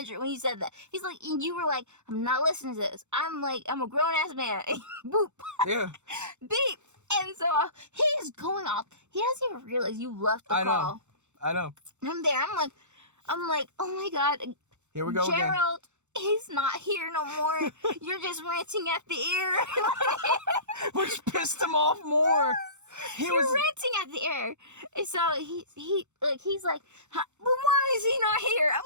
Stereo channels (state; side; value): late; left; 0.83 ms